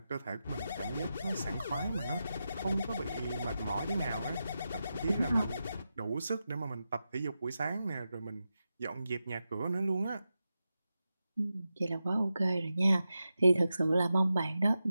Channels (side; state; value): both; inverted; correlation -0.90